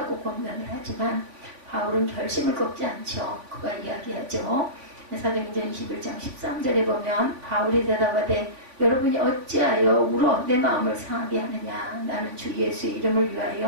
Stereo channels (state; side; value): late; left; 3.5 ms